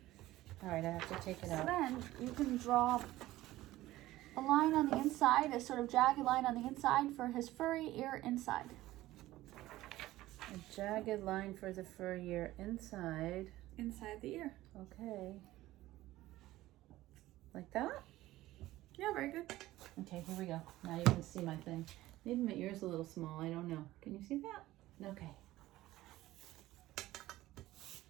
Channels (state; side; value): quieter; left; 16.3 dB